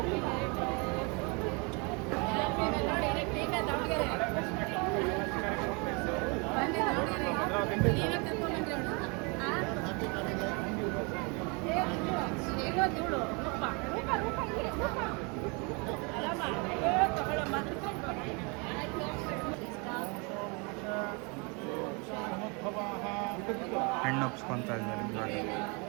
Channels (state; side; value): quieter; left; 31.3 dB